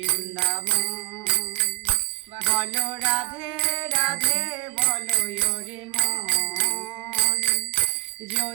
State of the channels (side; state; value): left; quieter; 25.5 dB